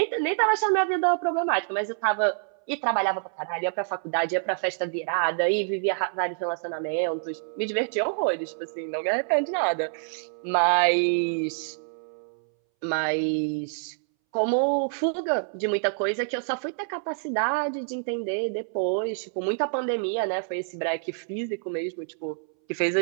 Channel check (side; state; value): left; silent; 60 dB below the other